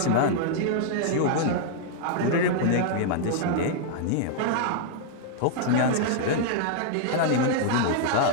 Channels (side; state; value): both; different; correlation -0.01